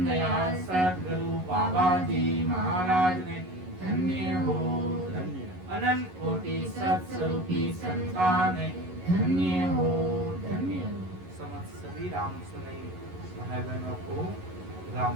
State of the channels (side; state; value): left; late; 11 ms